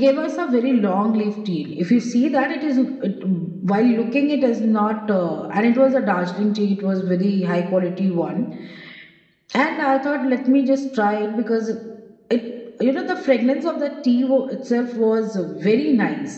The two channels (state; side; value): identical; both; correlation 1.00